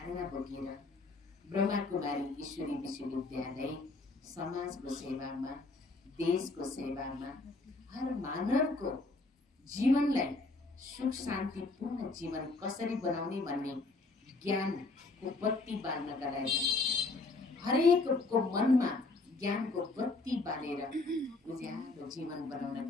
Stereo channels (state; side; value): quieter; right; 3.4 dB